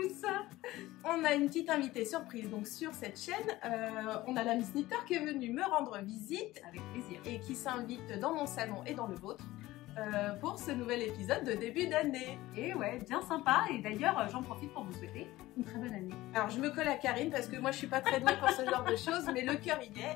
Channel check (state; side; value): quieter; right; 17.4 dB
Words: On a une petite invitée surprise donc sur cette chaîne. On a la Miss Knitter qui est venue me rendre visite avec plaisir et qui s'invite dans mon salon et dans le vôtre pour ce nouvel épisode de début d'année. Et ouais, bien sympa. Et d'ailleurs, j'en profite pour vous souhaiter une très bonne année. Alors je me colle à Karine parce que moi je suis pas très douée pour ce genre de choses, mais le cœur y